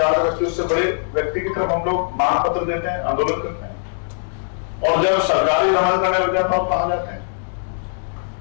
का व्यक्ति, उससे बड़े व्यक्ति की तरफ हम लोग मांग पत्र देते हैं, आंदोलन करते हैं। और जब सरकारी दमन करने लग जाता तो कहां जाते हैं?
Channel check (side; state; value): right; silent; digital silence